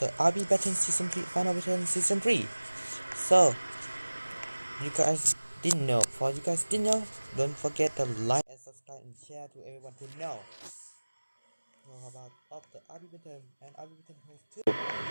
RB Battalion Season 3, Final Battalion Season 3. So, you guys didn't know. For you guys didn't know, don't forget to like and subscribe and share to everyone to know. About of the RB Battalion and RB Battalion Host 2.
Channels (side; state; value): both; inverted; correlation -1.00